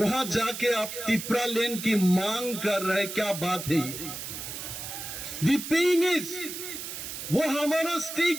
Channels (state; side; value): noise; right; hiss, 8 dB below the sound